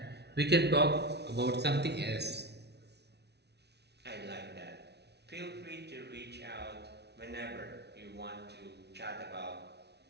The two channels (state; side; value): late; left; 0.49 ms